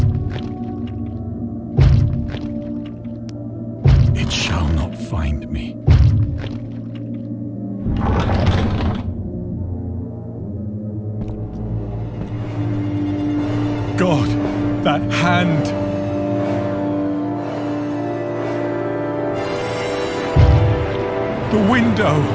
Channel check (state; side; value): identical; both; correlation 1.00